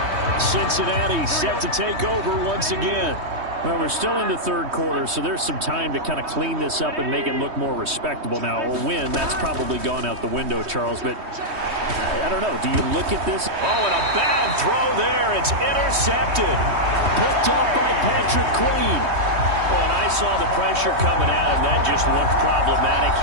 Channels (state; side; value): late; left; 3.2 ms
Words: Cincinnati set to take over once again. Well, we're still in the third quarter, so there's some time to kind of clean this up and make it look more respectable. Now, a win, that's probably gone out the window, Charles, but I don't know. Do you look at this? Oh, and a bad throw there. It's intercepted. Picked off by Patrick Queen. Oh, and I saw the pressure coming at him. That just looked problematic.